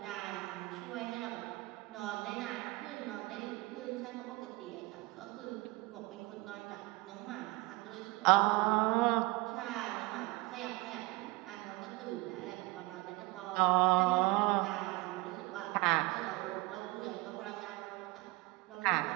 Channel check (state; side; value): quieter; left; 22.8 dB